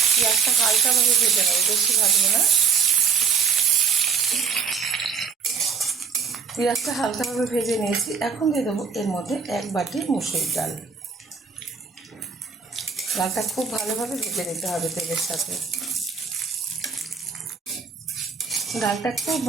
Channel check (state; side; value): quieter; left; 6.0 dB